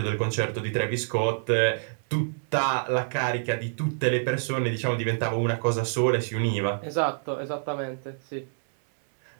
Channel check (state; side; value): silent; left; 60 dB below the other